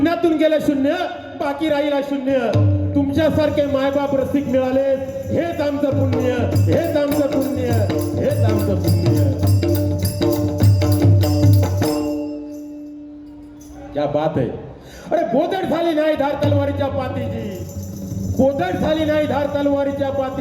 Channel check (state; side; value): identical; both; correlation 1.00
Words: गेलं शून्य बाकी राहिला शून्य. तुमच्यासारखे मायबाप रसिक मिळाले हेच आमचं पुण्य. हेच आमचं पुण्य. हेच आमचं पुण्य. क्या बात आहे. अरे बोधड झाली नाही धार तलवारीच्या पातीची. बोधड झाली नाही धार तलवारीच्या